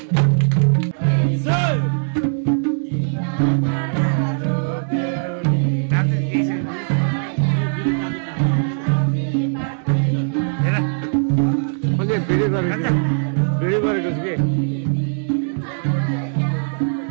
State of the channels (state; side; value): silent; left; digital silence